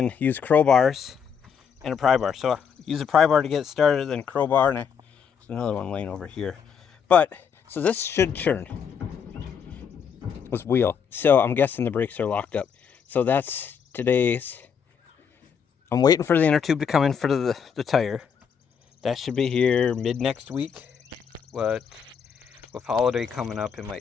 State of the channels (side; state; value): right; quieter; 7.0 dB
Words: used crowbars and a pry bar. So I use a pry bar to get it started, then crowbar, and there's another one laying over here. So this should churn. Was wheel. So I'm guessing the brakes are locked up. So that's today's. I'm waiting for the inner tube to come in for the tire. That should be here mid next week. With holiday coming up, it